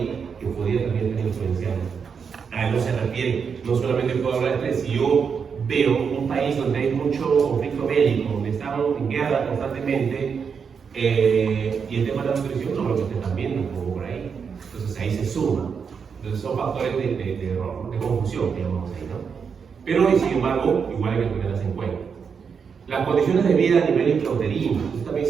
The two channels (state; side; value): quieter; left; 6.3 dB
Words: que podría también estar influenciando. A eso se refiere. No solamente puedo hablar de estrés, si yo veo un país donde hay mucho conflicto bélico, donde estamos en guerra constantemente, y el tema de la nutrición no lo que ustedes están viendo como por ahí. Entonces ahí se suma. Entonces son factores de error, de confusión, digamos ahí, ¿no? Pero sin embargo, igual hay que tenerlas en cuenta. Las condiciones de vida a nivel intrauterino, esto también